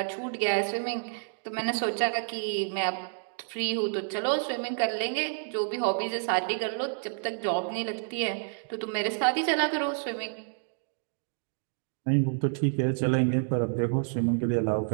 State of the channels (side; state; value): left; silent; digital silence